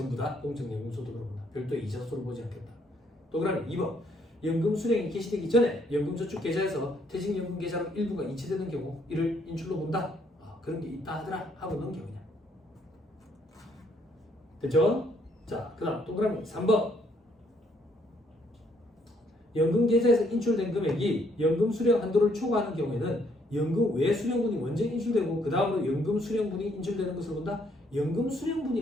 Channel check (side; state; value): both; normal; correlation 0.69